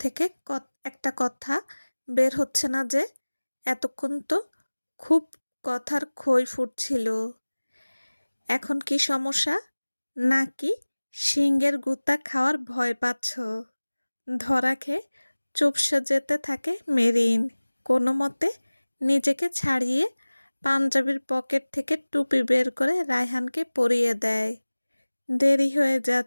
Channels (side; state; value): both; inverted; correlation -1.00